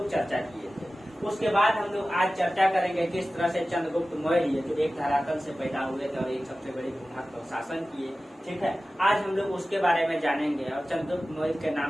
चर्चा किए थे। उसके बाद हम लोग आज चर्चा करेंगे किस तरह से चंद्रगुप्त मौर्य जो एक धरातल से पैदा हुए थे और एक सबसे बड़े भूभाग पर शासन किए। ठीक है, आज हम लोग उसके बारे में जानेंगे। और चंद्रगुप्त मौर्य के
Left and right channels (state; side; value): normal; both; correlation 0.96